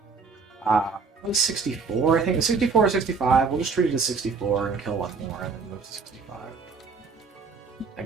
It was 64, I think. 64 or 65. We'll just treat it as 64 and kill one more and then move to 65.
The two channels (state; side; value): quieter; left; 4.8 dB